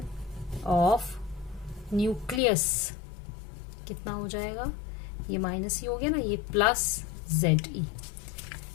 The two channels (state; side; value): drops out; right; at 2.4 s